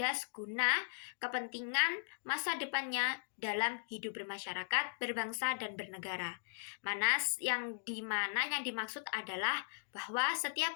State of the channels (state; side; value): silent; right; digital silence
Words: guna kepentingan masa depannya dalam hidup bermasyarakat, berbangsa, dan bernegara. Yang dimaksud adalah bahwa setiap